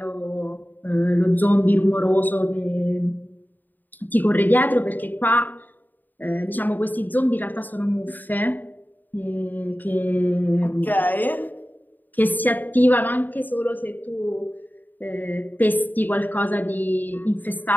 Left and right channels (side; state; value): right; late; 0.087 ms